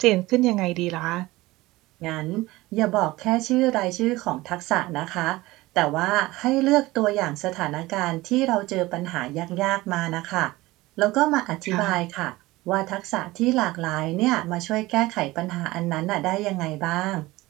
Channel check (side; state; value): left; quieter; 19.4 dB